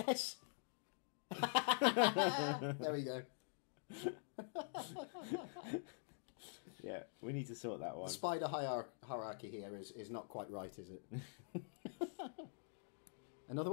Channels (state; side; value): silent; right; digital silence